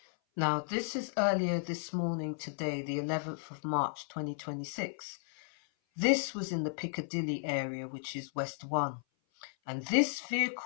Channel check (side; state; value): right; silent; 55 dB below the other